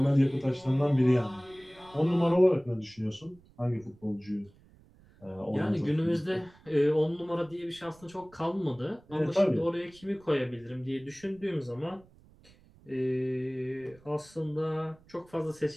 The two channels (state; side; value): noise; right; rumble, 27 dB below the sound